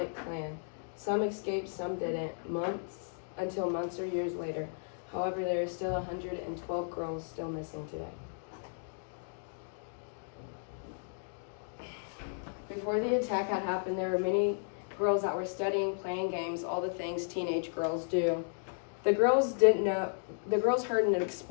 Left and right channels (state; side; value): silent; right; digital silence